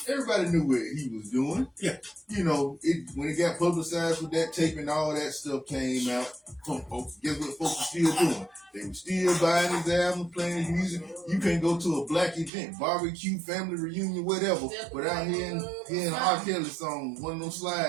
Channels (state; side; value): drops out; left; at 12.5 s